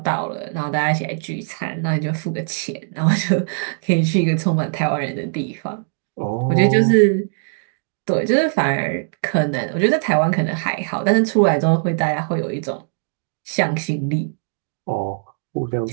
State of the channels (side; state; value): left; silent; digital silence